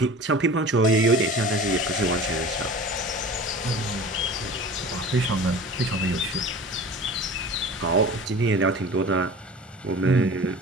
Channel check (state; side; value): normal; both; correlation 0.39